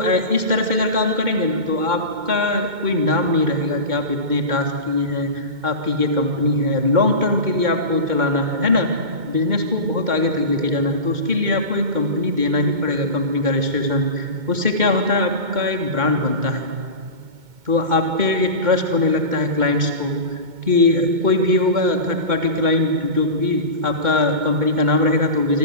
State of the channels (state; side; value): late; left; 2.2 ms